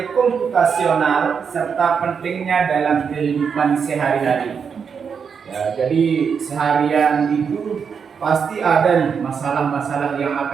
komputasional serta pentingnya dalam kehidupan sehari-hari. Ya, jadi seharian itu pasti ada nih masalah-masalah yang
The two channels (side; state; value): left; quieter; 6.4 dB